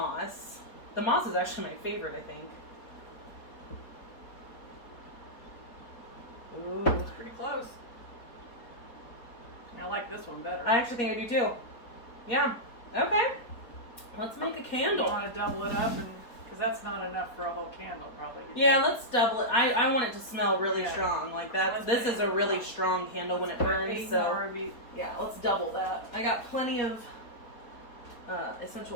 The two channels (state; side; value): late; right; 4.2 ms